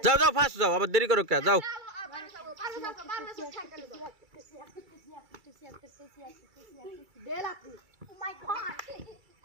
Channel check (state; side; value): late; left; 2.3 ms